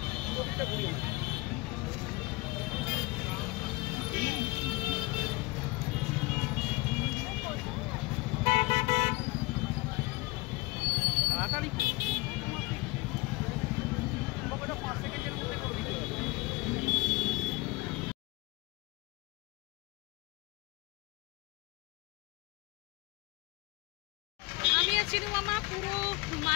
আমি আর চিনু মামা পুরো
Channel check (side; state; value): right; quieter; 23.5 dB